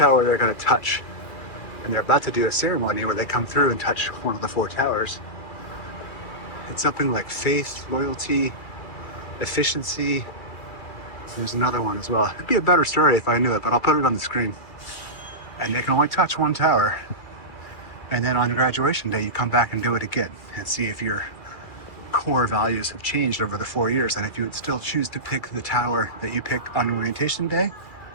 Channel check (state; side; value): late; right; 2.4 ms